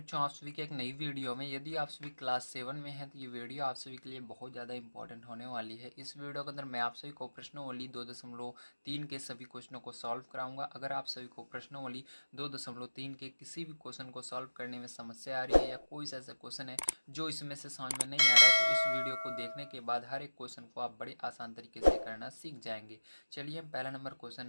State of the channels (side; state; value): both; inverted; correlation -1.00